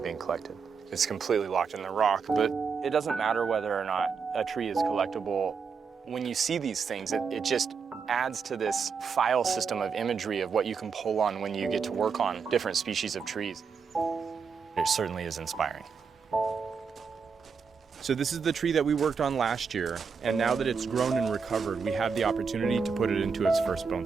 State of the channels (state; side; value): quieter; left; 5.7 dB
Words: being collected. It's completely locked in the rock, but it doesn't matter whether or not a tree is collectible. When you see these things, it just adds to this file system of imagery of what you can pull on when you get to work on different species of trees. It certainly is inspiring. So this is the tree that we worked on last year, and now that it's grown and recovered, we have the opportunity to put it into its first